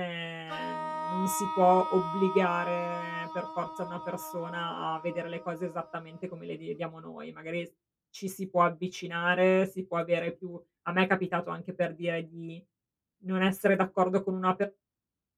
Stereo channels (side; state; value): both; identical; correlation 1.00